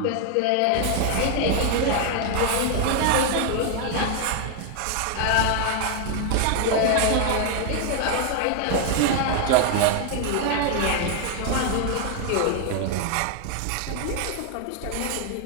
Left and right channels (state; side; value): different; both; correlation 0.01